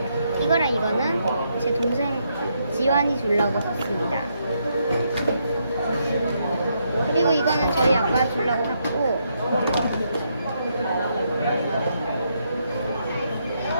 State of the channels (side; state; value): both; inverted; correlation -0.77